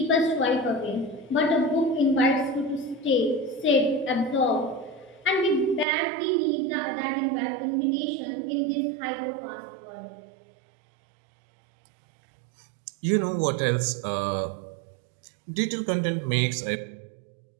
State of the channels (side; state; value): left; drops out; at 5.9 s